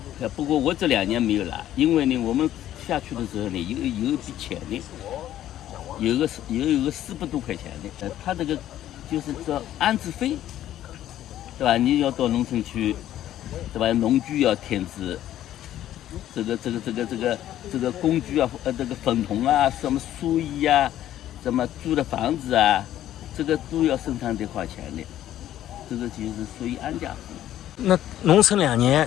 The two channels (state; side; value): quieter; right; 12.4 dB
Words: 不过我这2年没有拿，因为呢，我们下去的时候呢，有一笔钱的，有个400多块钱的，他这个就是叫安置费，对吧？你要到农村去，对吧？农具要添置。这个工具啊，这个粉桶啊，什么书衣啊，什么租的房子啊，这个都要生产得花钱的，这个就是属于安家费。那农村2年，